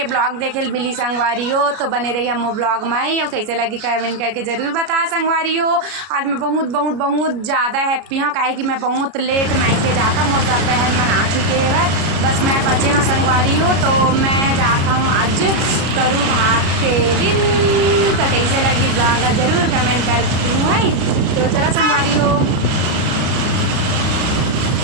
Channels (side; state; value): left; late; 33 ms